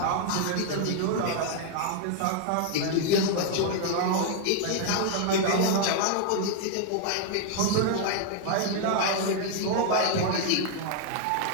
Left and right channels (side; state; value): both; different; correlation 0.00